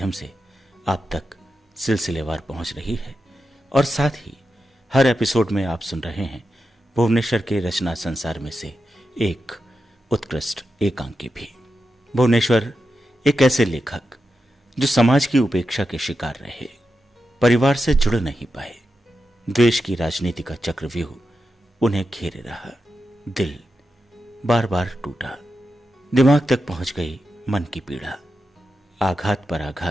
से आप तक सिलसिलेवार पहुंच रही है और साथ ही हर एपिसोड में आप सुन रहे हैं भुवनेश्वर के रचना संसार में से एक उत्कृष्ट एकांकी भी। भुवनेश्वर एक ऐसे लेखक जो समाज की उपेक्षा के शिकार रहे, परिवार से जुड़ नहीं पाए, द्वेष की राजनीति का चक्रव्यूह उन्हें घेरे रहा, दिल बार बार टूटा, दिमाग तक पहुंच गई मन की पीड़ा, आघात पर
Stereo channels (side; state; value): both; normal; correlation 0.89